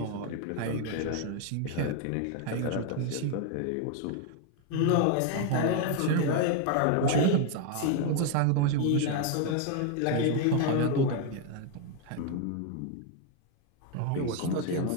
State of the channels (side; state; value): both; different; correlation 0.01